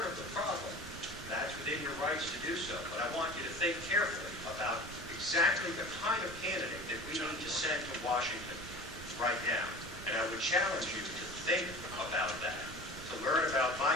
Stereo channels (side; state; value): right; noise; rumble, 14 dB below the sound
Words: of the problem, that's within your rights to do so. But I want you to think carefully about exactly the kind of candidate that we need to send to Washington right now. And I would challenge you to think about that.